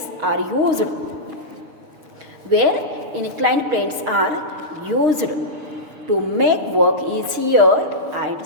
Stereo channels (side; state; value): left; late; 6.5 ms